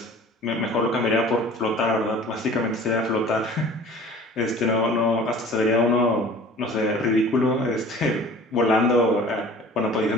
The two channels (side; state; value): both; normal; correlation 0.45